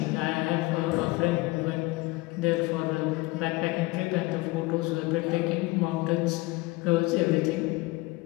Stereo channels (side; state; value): right; quieter; 22.1 dB